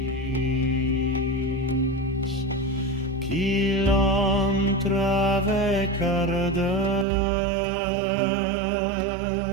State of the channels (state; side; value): drops out; left; at 7.1 s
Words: qu'il entre avec ardeur